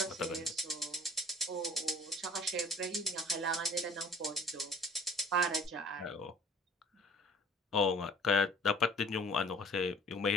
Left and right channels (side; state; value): both; normal; correlation 0.51